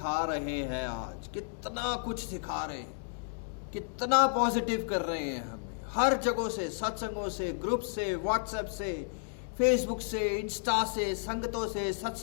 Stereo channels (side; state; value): right; silent; digital silence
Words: रहे हैं, आज कितना कुछ सिखा रहे हैं, कितना पॉजिटिव कर रहे हैं हमें, हर जगहों से, सत्संगों से, ग्रुप से, व्हाट्सएप से, फेसबुक से, इंस्टा से, संगतों से,